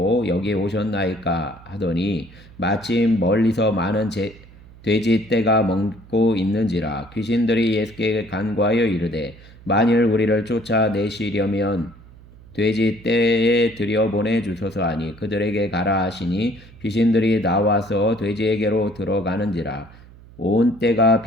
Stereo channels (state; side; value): noise; right; hum, 22 dB below the sound